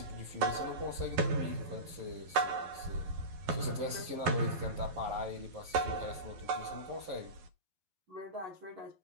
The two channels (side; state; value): left; late; 11 ms